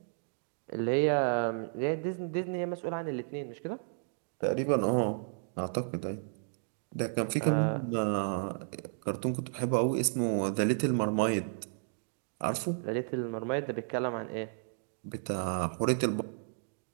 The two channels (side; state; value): left; silent; digital silence